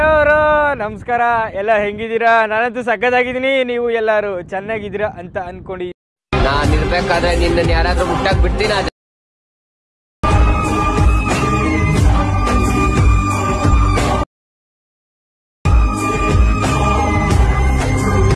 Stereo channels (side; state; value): both; identical; correlation 1.00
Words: ನಮಸ್ಕಾರ, ಎಲ್ಲ ಹೆಂಗಿದ್ದೀರಾ? ನಾನಂತೂ ಸಕ್ಕತ್ತಾಗಿದ್ದೀನಿ, ನೀವು ಎಲ್ಲರೂ ಚೆನ್ನಾಗಿದ್ದೀರಾ ಅಂತ ಅನ್ಕೊಂಡು. ನಾನು ಇರ್ಬೇಕಾದ್ರೆ ನಿನ್ನ ಯಾರಾದ್ರೂ ಮುಟ್ಟಾಕ್ ಬಿಡ್ತೀನ?